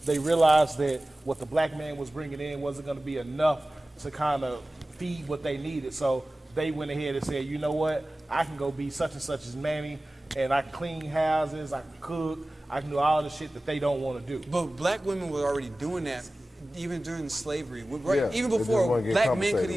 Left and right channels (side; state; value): both; normal; correlation 0.97